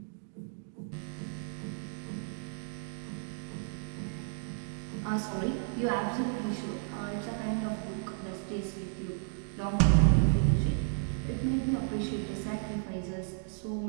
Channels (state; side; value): silent; left; 56 dB below the other